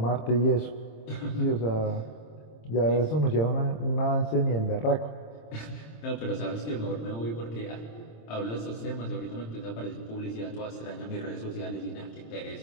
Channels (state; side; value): late; right; 26 ms